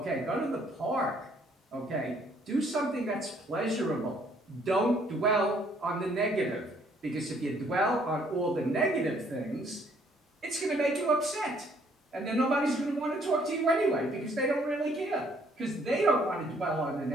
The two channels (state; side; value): normal; both; correlation 0.64